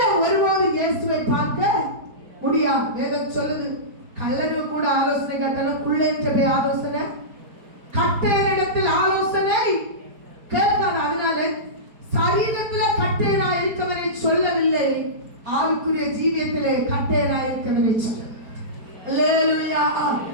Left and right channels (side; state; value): left; late; 4.6 ms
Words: ஒருவாது இயேசுவை பார்க்க முடியாது. வேதம் சொல்லுது, கள்ளனு கூட ஆலோசனை கேட்டாலும் குள்ள என்று ஆலோசனை கட்டையரிடத்தில் ஆலோசனை கேட்காது. அதனால சரீரத்துல கட்டையரா இருக்கவனை சொல்லவில்லை, ஆவிக்குரிய ஜீவியத்திலே கட்டையரா இருக்கவனை சொல்ல. அல்லேலூயா.